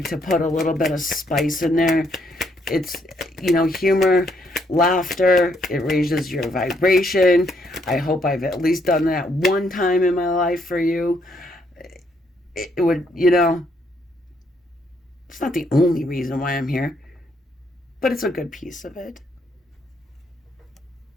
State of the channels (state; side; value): normal; both; correlation 0.72